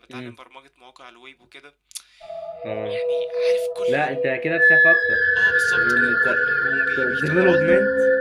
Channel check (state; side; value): identical; both; correlation 1.00